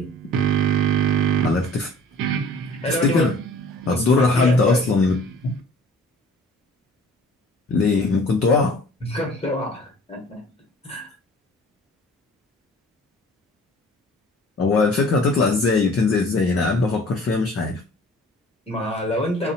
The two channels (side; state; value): both; normal; correlation 0.49